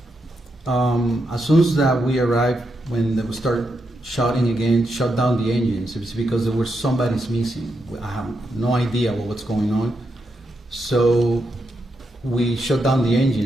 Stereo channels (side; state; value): both; normal; correlation 0.83